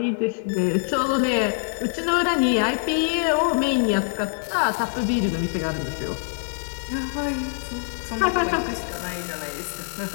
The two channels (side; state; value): right; silent; digital silence